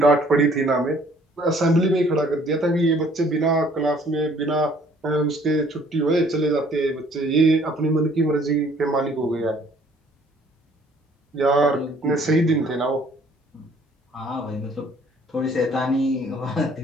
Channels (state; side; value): normal; both; correlation 0.58